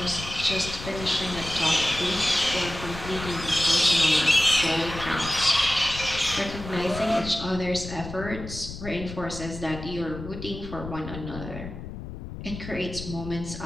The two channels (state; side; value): noise; left; rumble, 10 dB below the sound